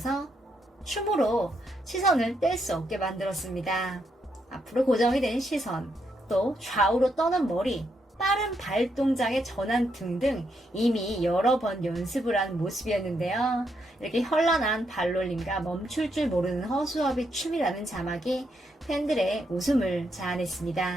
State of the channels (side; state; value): both; normal; correlation 0.78